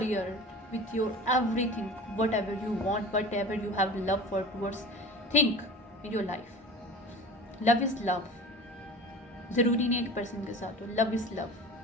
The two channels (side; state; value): both; normal; correlation 0.36